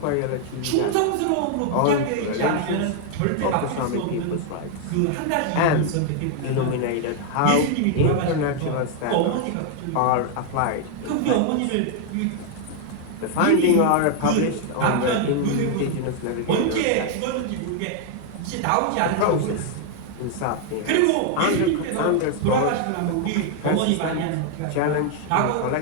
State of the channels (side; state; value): both; different; correlation 0.00